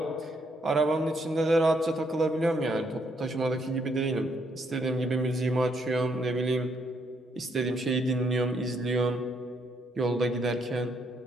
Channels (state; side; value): normal; both; correlation 0.73